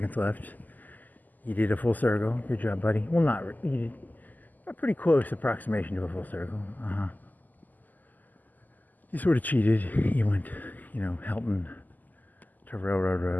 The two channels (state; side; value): late; right; 0.083 ms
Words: left. You did a full circle. Good job, buddy. Well, you did a pretty close approximation to a full circle. You sort of cheated. You went, Helton to Railroad